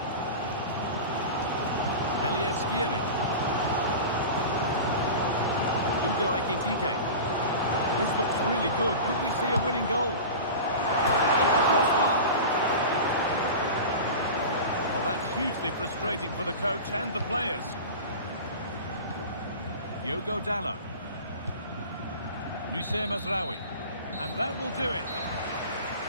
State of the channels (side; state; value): both; inverted; correlation -0.32